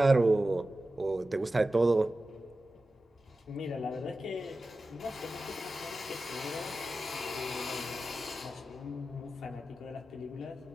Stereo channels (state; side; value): normal; both; correlation 0.94